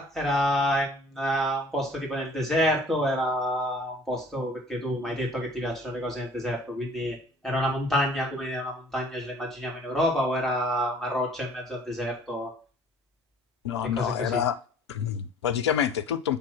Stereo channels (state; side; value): normal; both; correlation 0.51